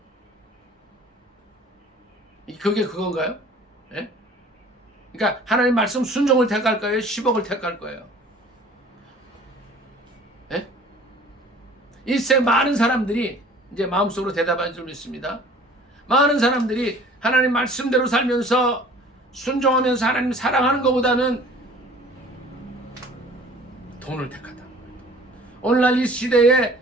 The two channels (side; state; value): both; normal; correlation 0.49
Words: 그게 그건가요? 예? 그러니까 하나님 말씀 순종을 택할 거예요? 10억을 택할 거예요? 예? 이 세상 많은 사람들이 이제 마음속으로 대답한 줄 믿습니다. 많은 사람들이 하나님 말씀대로 살면서 순종하면서 하나님 사랑하는 것보다는 돈을 택하다. 오늘날 이 시대에